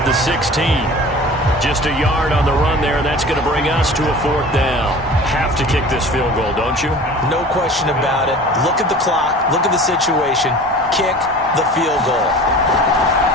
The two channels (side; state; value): both; normal; correlation 0.41